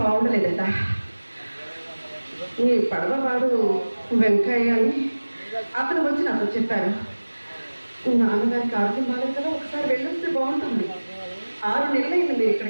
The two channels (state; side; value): inverted; both; correlation -1.00